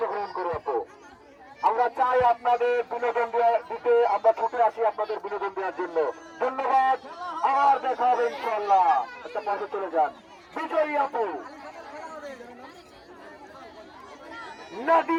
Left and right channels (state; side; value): identical; both; correlation 1.00